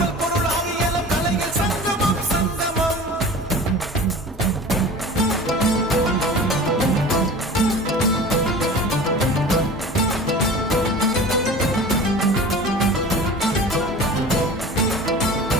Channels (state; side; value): normal; both; correlation 0.37